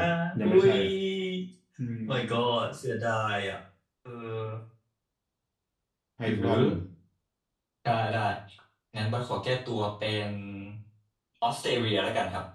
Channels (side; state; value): both; identical; correlation 1.00